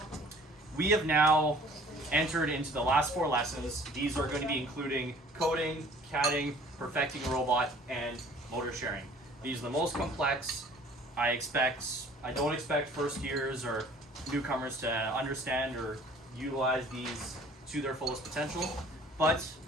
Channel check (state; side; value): normal; both; correlation 0.52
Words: We have now entered into the last 4 lessons. These are going to be including coding, CADing, perfecting a robot, and motor sharing. These are the most complex. I don't expect first years or newcomers to understand or utilize these to their fullest potential, but